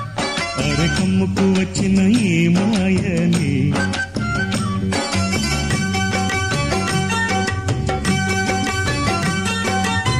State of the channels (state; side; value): identical; both; correlation 1.00